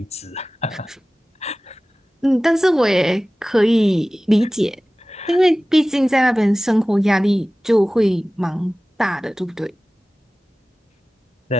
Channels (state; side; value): normal; both; correlation 0.97